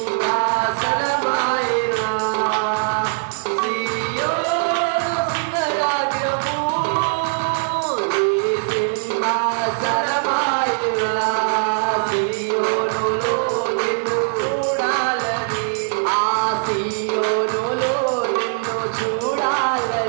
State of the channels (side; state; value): left; silent; 60 dB below the other